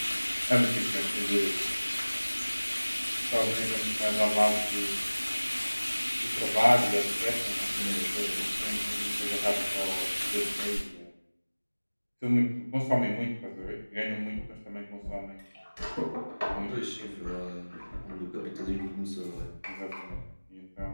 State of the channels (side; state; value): both; inverted; correlation -1.00